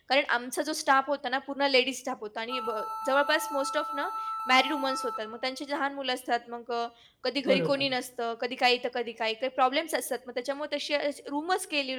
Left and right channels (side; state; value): both; identical; correlation 1.00